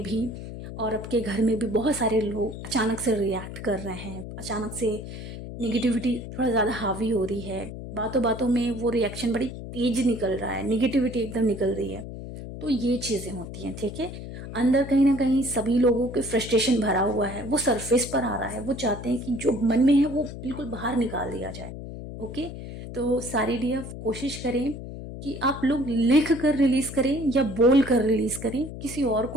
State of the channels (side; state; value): left; noise; hum, 10 dB below the sound